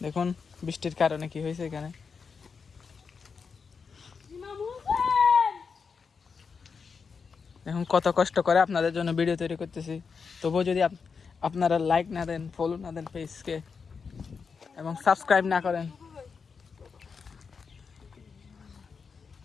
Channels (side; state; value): right; quieter; 5.5 dB